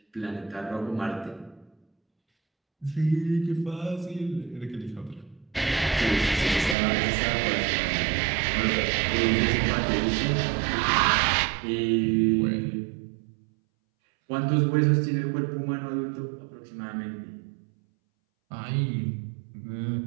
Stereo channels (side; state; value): left; drops out; at 6.8 s